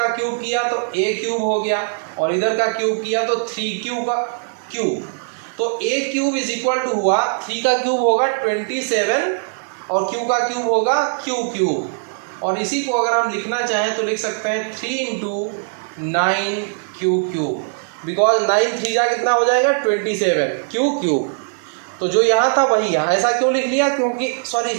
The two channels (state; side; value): silent; left; digital silence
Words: क्यूब किया तो a क्यूब हो गया, और इधर का क्यूब किया तो 3q का क्यूब, तो a cube is equal to हुआ 3 का क्यूब होगा 27 और q का क्यूब होगा q क्यूब, और इसी को अगर हम लिखना चाहें तो लिख सकते हैं 3 × 9q क्यूब, बिकॉज 9 3 जा कितना हो जाएगा 27 q क्यूब। तो जो यहाँ था वही यहाँ, ऐसा क्यों लिख लिया, क्योंकि सॉरी